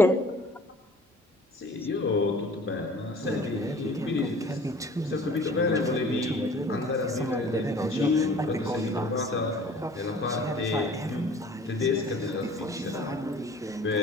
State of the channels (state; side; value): normal; both; correlation 0.48